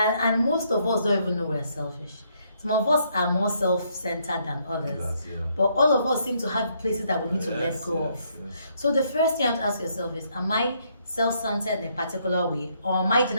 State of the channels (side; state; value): both; inverted; correlation -0.72